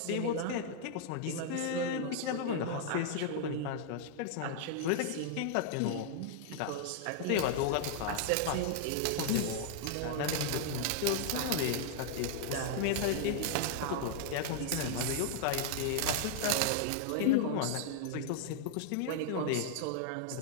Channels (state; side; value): different; both; correlation -0.01